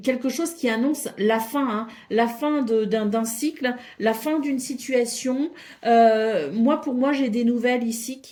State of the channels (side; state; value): both; identical; correlation 1.00